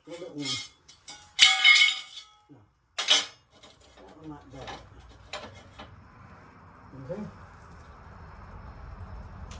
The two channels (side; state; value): both; identical; correlation 1.00